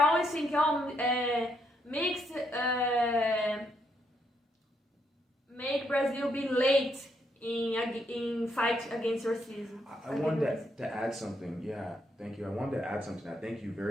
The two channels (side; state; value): both; normal; correlation 0.76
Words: thinking, mixed make Brazil be late in fight against racism. I wanted to add something. Yeah, thank you. I wanted to add something. I think you